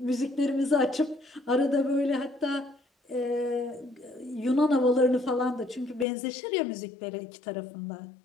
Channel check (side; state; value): right; drops out; at 6.1 s